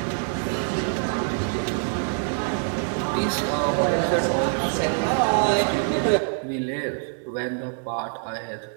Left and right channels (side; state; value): left; silent; 62 dB below the other